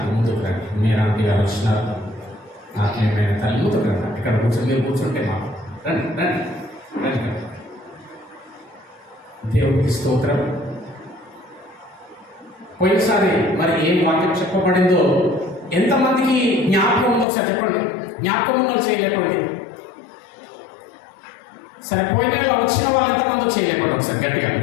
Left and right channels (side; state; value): right; drops out; at 17.2 s